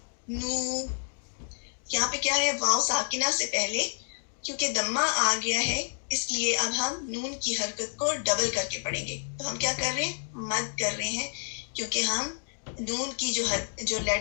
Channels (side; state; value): right; silent; 58 dB below the other